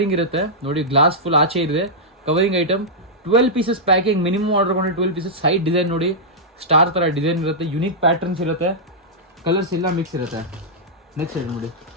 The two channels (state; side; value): normal; both; correlation -0.10